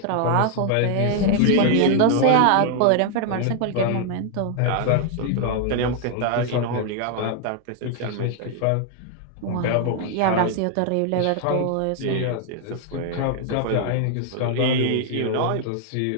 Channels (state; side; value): different; both; correlation 0.00